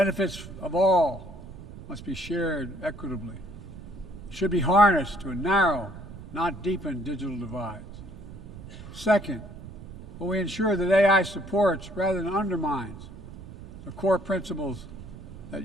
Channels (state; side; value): noise; right; rumble, 14 dB below the sound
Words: of all must be shared equitably. It should be harnessed to narrow, not deepen digital divides. Second, will we ensure that AI supports rather than undermines the core principles that